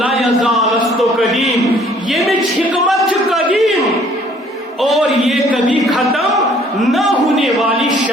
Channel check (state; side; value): normal; both; correlation 0.59